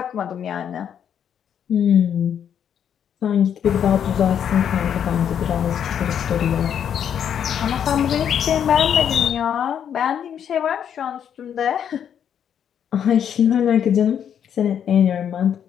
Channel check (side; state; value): right; quieter; 8.8 dB